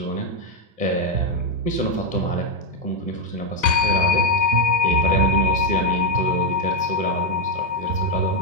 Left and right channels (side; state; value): right; late; 2.3 ms